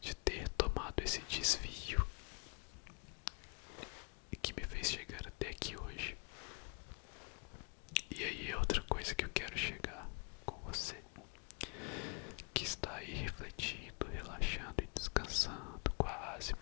de ter tomado esse desvio que me fez chegar até aqui hoje. E aí é outra coisa que eu quero chegar com você, que está aí refletindo, relaxando e descansando, quase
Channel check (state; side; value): quieter; right; 34.8 dB